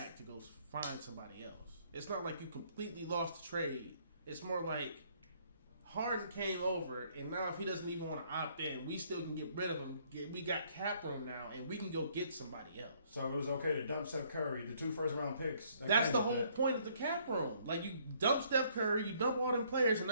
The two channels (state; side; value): inverted; both; correlation -0.65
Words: to go find somebody else. It's not like you completely lost the trade. It's more like Harden came over, and now if he doesn't even want to opt in, we still can get rid of him. We got cap room now, and we can go get somebody else. So it was okay to dump Steph Curry, the 2 first-round picks. That's the whole point of the cap room. Like, you dump Steph Curry, you dump all them players, and